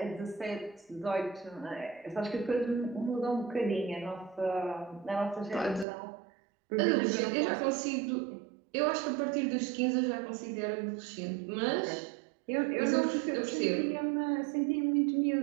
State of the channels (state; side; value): drops out; left; at 5.9 s